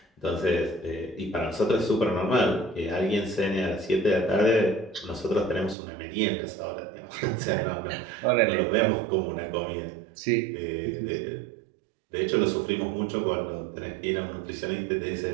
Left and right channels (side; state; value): left; drops out; at 5.8 s